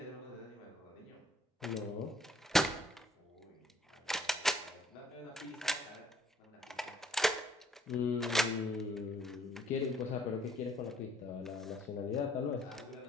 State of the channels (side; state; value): both; normal; correlation 0.63